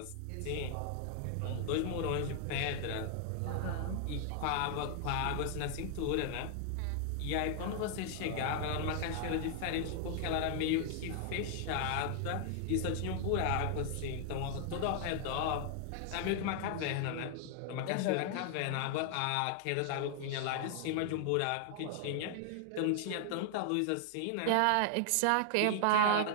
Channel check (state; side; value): different; both; correlation 0.00